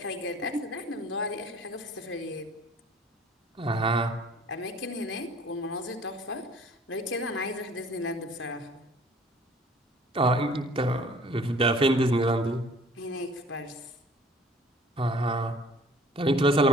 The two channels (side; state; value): both; normal; correlation 0.51